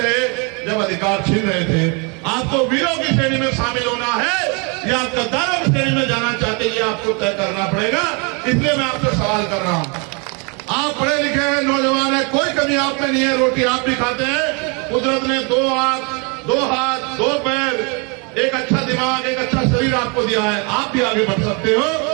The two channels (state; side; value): quieter; left; 33.1 dB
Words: रहे जब अधिकार छीन रहे थे। आपको वीरों की श्रेणी में शामिल होना है या आप गद्दारों की श्रेणी में जाना चाहते हैं, ये आपको तय करना पड़ेगा। इसलिए मैं आपसे सवाल कर रहा हूं। आप पढ़े लिखे हैं, नौजवान है, कोई कमी आप में नहीं है, रोटी आप भी खाते हैं। कुदरत ने 2 आंख, 2 हाथ, 2 पैर, एक अच्छा दिमाग, एक अच्छा शरीर आपको दिया है। आप भी आगे बढ़ सकते हो